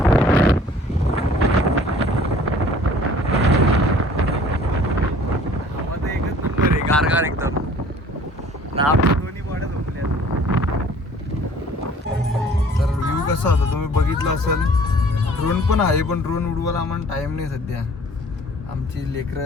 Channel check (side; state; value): both; normal; correlation 0.52